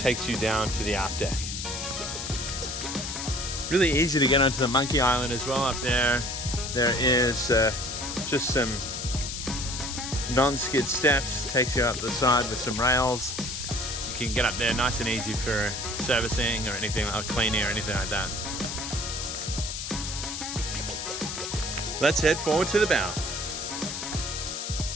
you down to the aft deck. Really easy to get onto the monkey island as well up there. There is just some non-skid steps, takes you up the side with some rails. You can get up there nice and easy for servicing or anything like cleaning or anything like that. Let's head forward to the bow.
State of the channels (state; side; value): noise; left; hiss, 5 dB below the sound